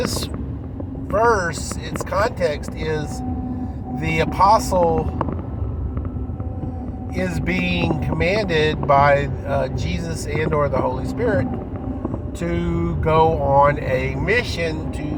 verse, its context is the apostle is being commanded by Jesus and or the Holy Spirit to go on a mission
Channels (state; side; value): identical; both; correlation 1.00